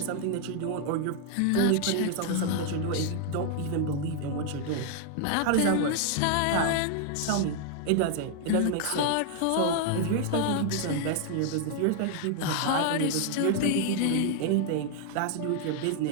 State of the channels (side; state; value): both; different; correlation 0.00